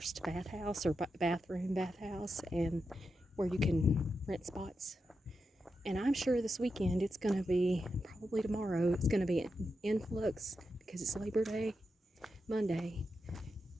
bathhouse or bathhouse, and where you can rent spots. And I'm sure this weekend it's going to be, probably tomorrow, it's going to be an influx because it's Labor Day, Monday.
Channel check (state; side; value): normal; both; correlation 0.88